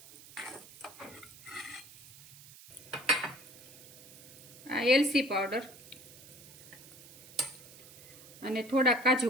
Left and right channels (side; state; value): right; noise; hiss, 19 dB below the sound